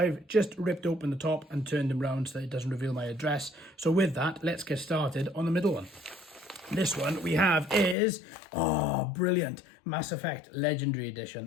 just ripped open the top and turned them round so that it doesn't reveal my address. So with that, let's get started on the middle one. This one we have is, brilliant, Mass Effect Legendary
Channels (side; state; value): right; drops out; at 8.0 s